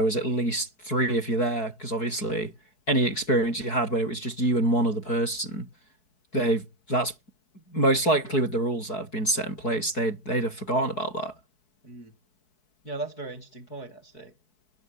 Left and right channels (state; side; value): late; right; 4.7 ms